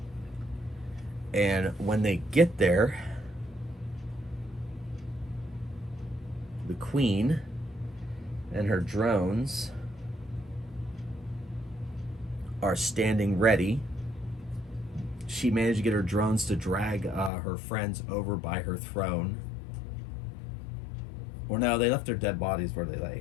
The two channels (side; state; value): right; drops out; at 17.3 s